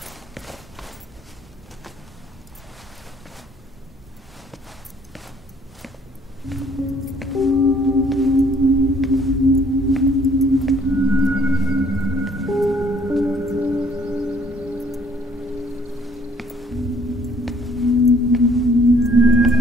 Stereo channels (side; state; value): both; normal; correlation 0.60